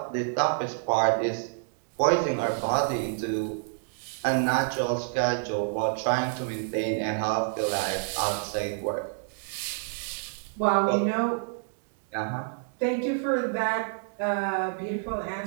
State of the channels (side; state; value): left; silent; digital silence